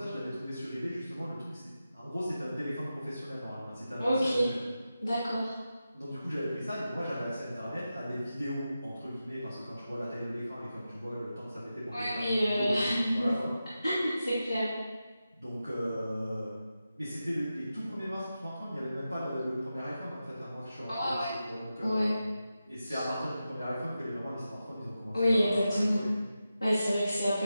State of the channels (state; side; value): inverted; both; correlation -0.91